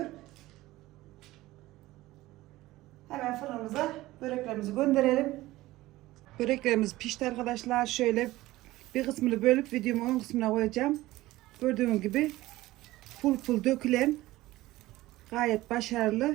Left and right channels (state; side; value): quieter; left; 17.6 dB